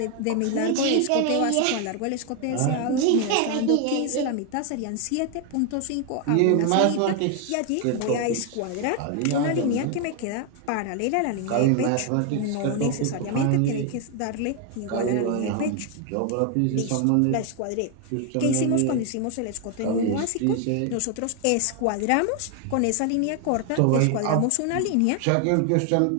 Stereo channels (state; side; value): different; both; correlation 0.01